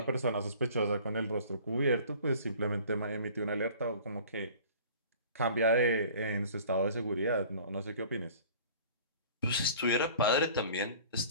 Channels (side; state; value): both; inverted; correlation -0.47